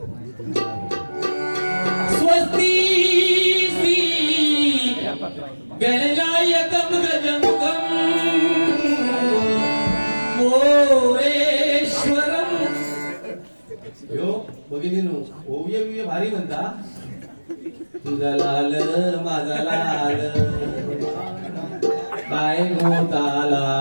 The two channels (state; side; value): inverted; both; correlation -1.00